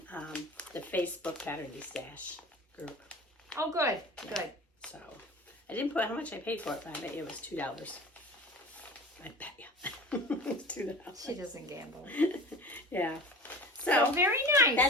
the Facebook Pattern Stash group. Oh, good, Yeah. good. So I didn't put how much I paid for it, but I bet you it was $2. I bet you. It was $2. She doesn't gamble. Yeah. So very nice.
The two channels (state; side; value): normal; both; correlation 0.38